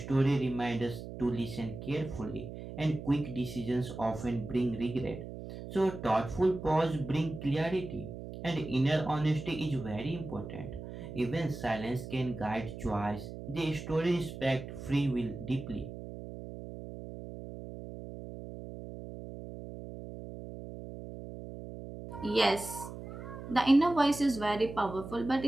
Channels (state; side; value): noise; right; hum, 10 dB below the sound